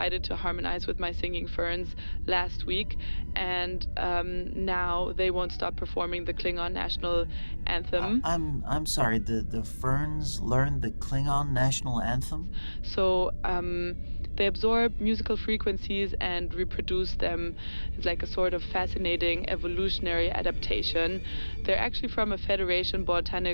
to harmonize with my singing ferns last week, and now they won't stop performing the Klingon national anthem. I'm sorry, the ferns learned the Klingon national anthem? So, they absorb musical frequencies and reproduce them. It's like a sort of fascinating evolutionary adaptation. They're actually from a Federation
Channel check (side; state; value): both; inverted; correlation -1.00